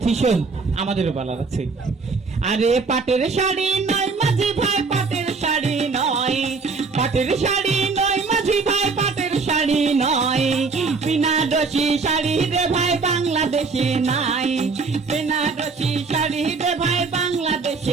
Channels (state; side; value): quieter; left; 4.5 dB